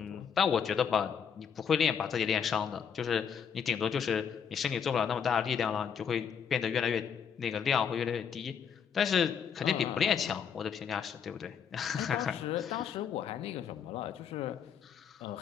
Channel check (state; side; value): quieter; right; 7.3 dB